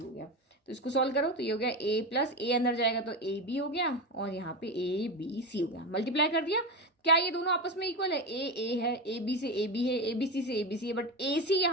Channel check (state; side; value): normal; both; correlation 0.19